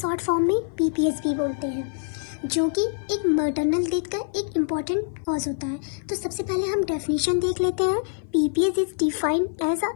फॉर्म में पीपीएस भी बोलते हैं, जो कि एक मैटरनल डेथ का एक इम्पॉर्टेंट कॉज होता है। तो सबसे पहले हम डेफिनेशन देख लेते हैं। PPS is defined as a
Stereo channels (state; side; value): silent; right; 56 dB below the other